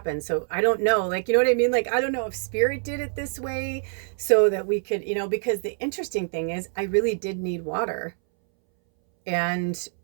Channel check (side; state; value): left; silent; 62 dB below the other